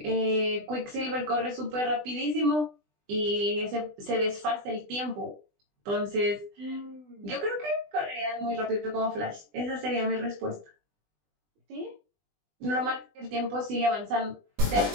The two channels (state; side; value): late; left; 20 ms